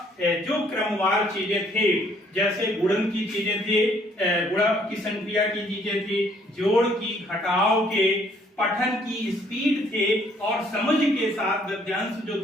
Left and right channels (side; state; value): both; normal; correlation 0.64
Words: जो क्रमवार चीजें थी, जैसे गुणन की चीजें थी, गुणा की संक्रिया की चीजें थी, जोड़ की, घटाव के, पठन की स्पीड थे और समझ के साथ गद्यांश जो